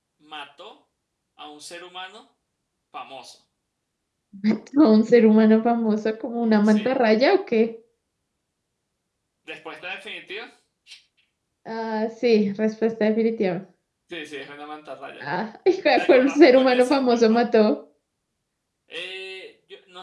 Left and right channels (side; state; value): both; identical; correlation 1.00